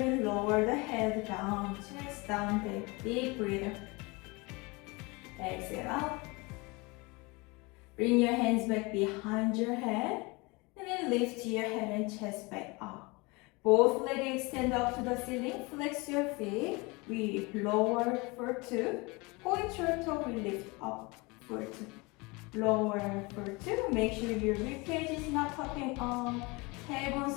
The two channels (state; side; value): quieter; right; 26.1 dB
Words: lower the head down, chest down, take deep breather. Exhale out. Bring your hands back behind your head. And then lift your head and chest back up. Both legs extend up to the ceiling. Flex your feet. We lower for 2. Point your toe, we lift up for 2. Lower for 2. Make sure your ribcage is not popping up.